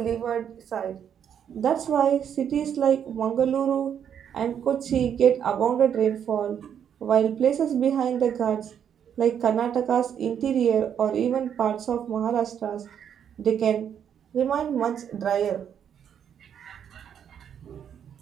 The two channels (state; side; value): quieter; left; 8.6 dB